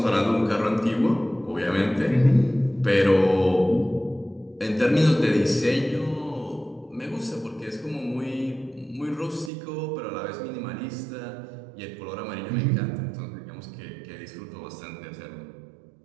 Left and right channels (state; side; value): drops out; left; at 9.5 s